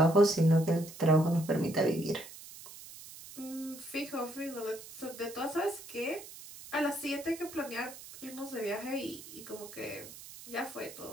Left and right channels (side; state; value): right; noise; hiss, 15 dB below the sound